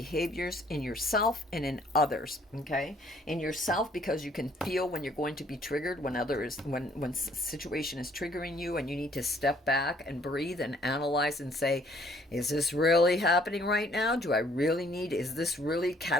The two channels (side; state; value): both; normal; correlation 0.62